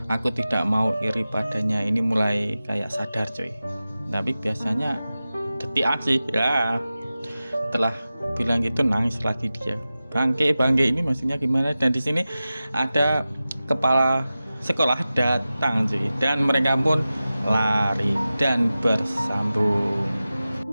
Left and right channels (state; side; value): inverted; both; correlation -0.95